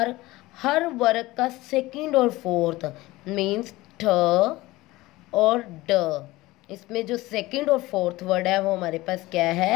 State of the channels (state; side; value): quieter; right; 19.2 dB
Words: हर वर्ग का सेकंड और फोर्थ मीन्स ठ और ड, इसमें जो सेकंड और फोर्थ वर्ड है वो हमारे पास क्या